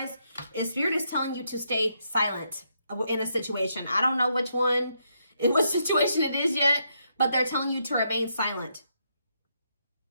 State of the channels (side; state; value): both; inverted; correlation -0.78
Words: is Spirit is telling you to stay silent in a situation. I don't know which one, in what situation it is yet, but they're telling you to remain silent.